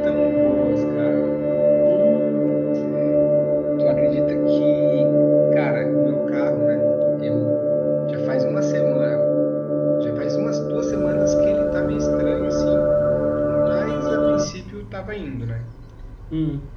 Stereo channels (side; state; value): both; identical; correlation 1.00